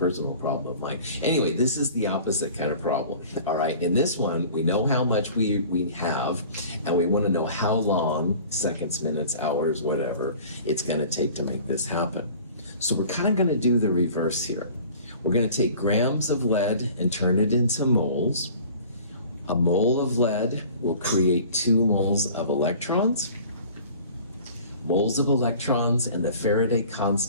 problem of mine. Anyway, this is the opposite kind of problem. All right, in this one, we know how much we have, and we want to know how long, seconds, minutes, hours, whatever, it's going to take to make this happen. So we're kind of going to do the reverse here. We're going to take grams of lead and turn it into moles. A mole of lead will create 2 moles of electrons. Moles of electrons and the Faraday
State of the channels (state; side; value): inverted; both; correlation -0.45